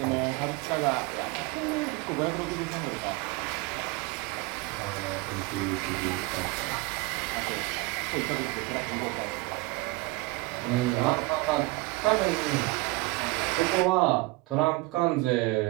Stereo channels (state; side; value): quieter; left; 23.2 dB